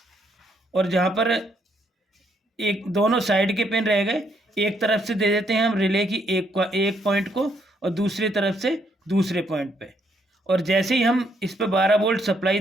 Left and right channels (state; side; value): normal; both; correlation 0.72